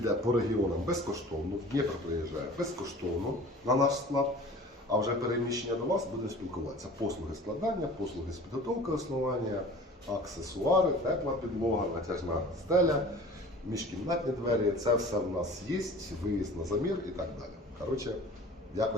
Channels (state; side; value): normal; both; correlation 0.43